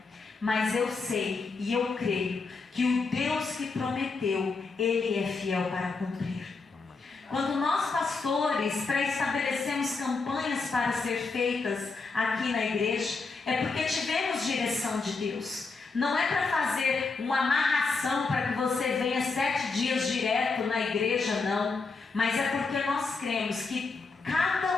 mas eu sei e eu creio que o Deus que prometeu, Ele é fiel para cumprir. Quando nós pastores estabelecemos campanhas para ser feitas aqui na igreja, é porque tivemos direção de Deus. Não é para fazer uma amarração para que você venha 7 dias direto na igreja, não. Mas é porque nós cremos que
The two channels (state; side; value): quieter; right; 4.2 dB